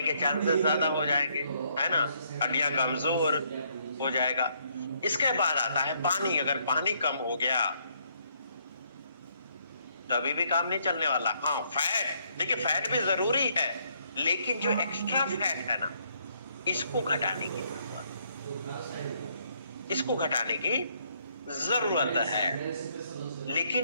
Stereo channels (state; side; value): inverted; both; correlation -0.70